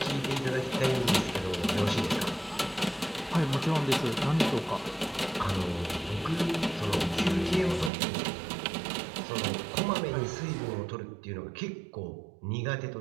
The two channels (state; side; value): drops out; left; at 7.9 s